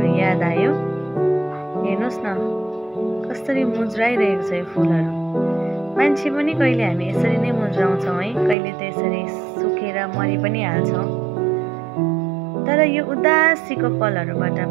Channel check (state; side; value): drops out; left; at 8.6 s